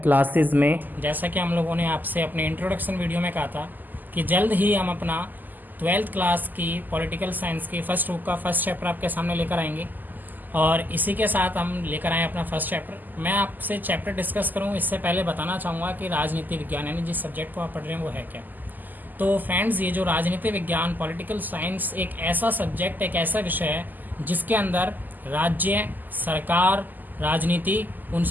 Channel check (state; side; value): late; left; 0.086 ms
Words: classes में। जैसा कि हम लोगों ने आपसे अपने इंट्रोडक्शन वीडियो में कहा था कि जल्द ही हम अपना 12th क्लास की पॉलिटिकल साइंस की फर्स्ट बुक का फर्स्ट चैप्टर आपके सामने लेकर आएंगे और इसी के साथ हम लेकर आए अपना फर्स्ट चैप्टर। मैं आपसे चैप्टर डिस्कस करूँ इससे पहले बताना चाहूँगा कि राजनीति विज्ञान यानी जिस सब्जेक्ट को आप पढ़ रहे हैं वो है क्या। तो फ्रेंड्स, ये जो राजनीति विज्ञान पॉलिटिकल साइंस एक ऐसा सब्जेक्ट, एक ऐसा विषय है जिसके अंदर राज्य, सरकार, राजनीति,